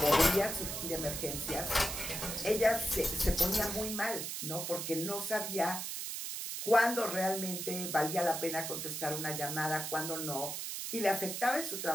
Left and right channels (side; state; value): right; noise; hiss, 4 dB below the sound